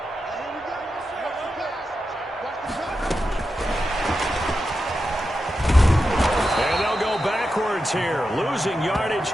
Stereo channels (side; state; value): both; normal; correlation 0.89